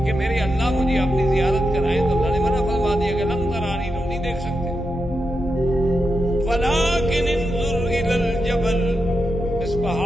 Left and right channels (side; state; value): both; normal; correlation 0.87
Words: کہ میرے اللہ مجھے اپنی زیارت کرائیں، تو اللہ نے منع فرما دیا کہ لن ترانی، تم نہیں دیکھ سکتے، ولکن انظر الی الجبل، اس